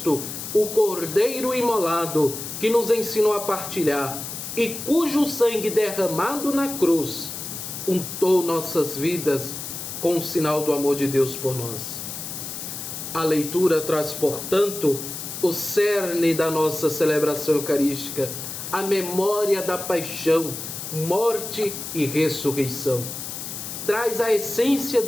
o Cordeiro imolado, que nos ensinou a partilhar e cujo sangue derramado na cruz untou nossas vidas com o sinal do amor de Deus por nós. A leitura traz, portanto, o cerne da nossa celebração eucarística, a memória da paixão, morte e ressurreição. Traz a essência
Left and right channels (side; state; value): left; noise; hiss, 8 dB below the sound